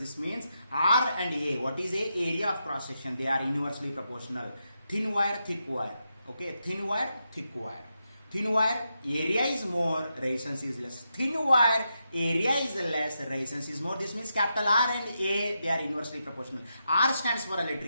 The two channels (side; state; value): both; inverted; correlation -0.85